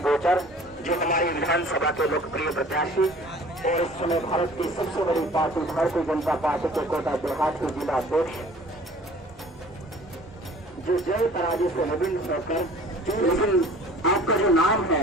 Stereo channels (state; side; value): normal; both; correlation 0.49